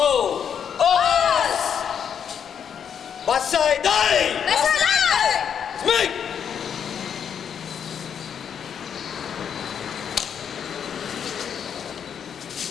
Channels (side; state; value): right; quieter; 7.9 dB